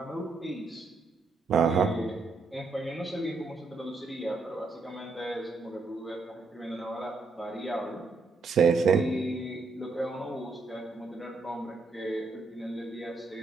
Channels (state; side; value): quieter; left; 3.8 dB